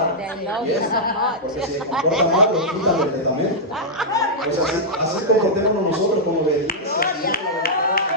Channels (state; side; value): normal; both; correlation -0.08